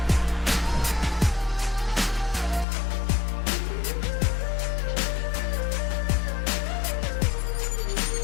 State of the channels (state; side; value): drops out; right; at 2.7 s